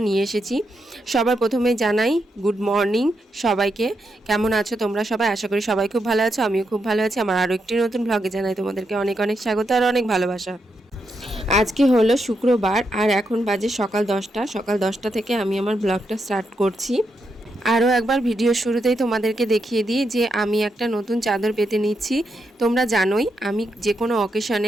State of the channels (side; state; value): both; normal; correlation 0.82